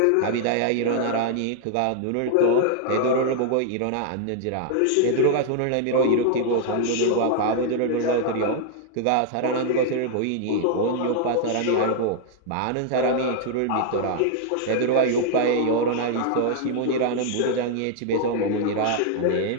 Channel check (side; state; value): both; different; correlation 0.00